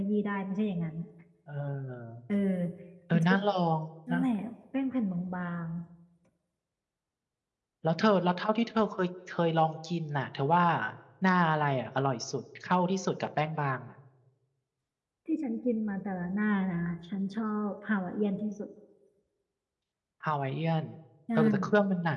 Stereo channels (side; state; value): both; identical; correlation 1.00